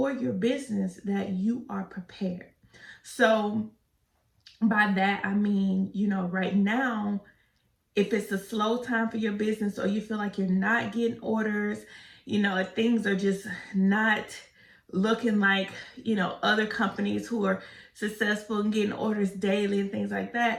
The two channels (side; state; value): both; identical; correlation 1.00